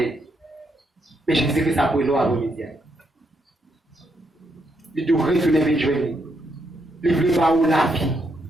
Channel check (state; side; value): normal; both; correlation 0.78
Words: Mais Jésus-Christ a pris l'eau à l'immédiat. Il doit retourner vers Dieu. Il voulait pas où la vie.